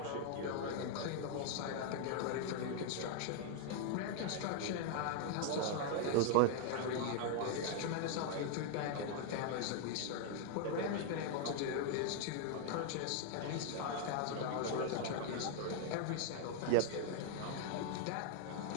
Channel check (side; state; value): both; different; correlation 0.00